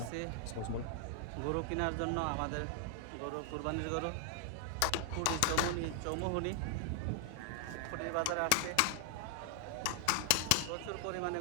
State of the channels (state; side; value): different; both; correlation 0.00